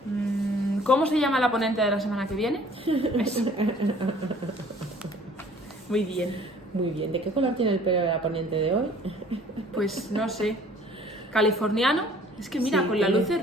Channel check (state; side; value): normal; both; correlation 0.54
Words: ¿Cómo se llama la ponente de la semana que viene? Eso. Muy bien. Muy bien. ¿De qué color tiene el pelo de la ponente de hoy? Pues no sé. Californiano. Es que mira, Sí, con la tiene- luz